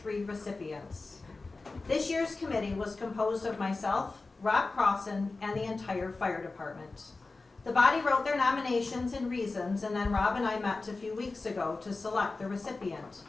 recipients. This year's committee was composed of myself, Rob Crossan, and the entire fire department. The body wrote their nominations and reasons, and then Rob and I met a few weeks ago to select the recipient.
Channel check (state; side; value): quieter; right; 3.6 dB